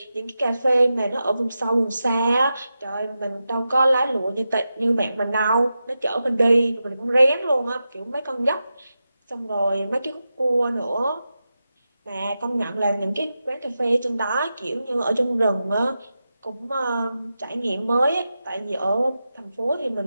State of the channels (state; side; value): inverted; both; correlation -0.91